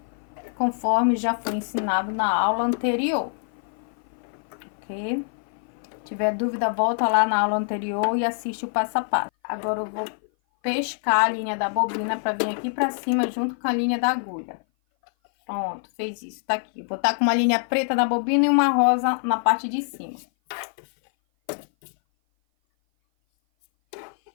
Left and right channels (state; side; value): silent; right; 57 dB below the other